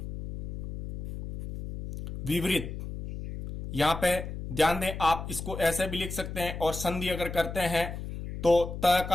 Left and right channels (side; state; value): left; noise; hum, 7 dB below the sound